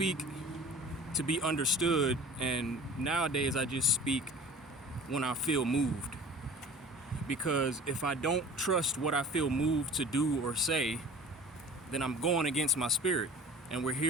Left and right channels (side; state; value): both; normal; correlation 0.42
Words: to be understood, and nowadays I just speak when I feel moved. Because if I don't trust what I feel moved to do or say, then I'm going against my spirit. And we're